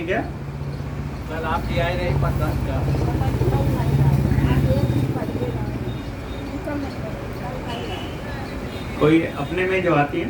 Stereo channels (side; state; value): both; identical; correlation 1.00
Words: क्या? कल आप ले आए रहे प्रसाद का। कोई अपने में जो आती है